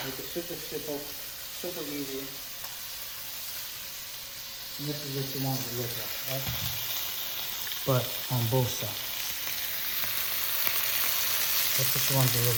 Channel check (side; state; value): left; noise; rumble, 26 dB below the sound